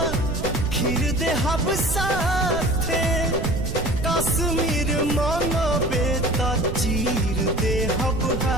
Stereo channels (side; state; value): right; noise; rumble, 5 dB below the sound